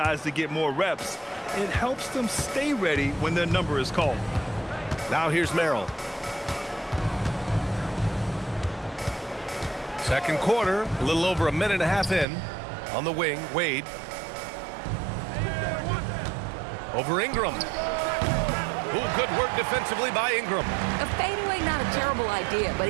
to get more reps, it helps them stay ready when their number is called. Now here's Merrill. Second quarter, a little over a minute and a half in. On the wing, Wade. Over Ingram. Ooh, good work defensively by Ingram. A fadeaway, not a terrible idea, but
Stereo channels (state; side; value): drops out; left; at 12.2 s